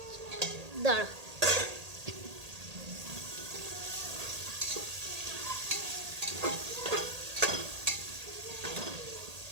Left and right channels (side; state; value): left; late; 1.8 ms